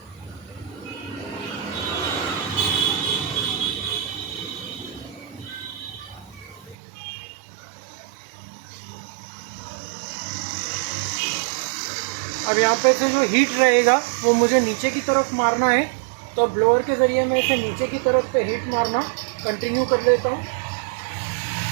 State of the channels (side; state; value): left; drops out; at 6.8 s